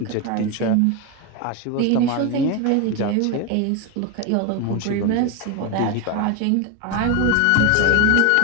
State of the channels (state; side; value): different; both; correlation 0.02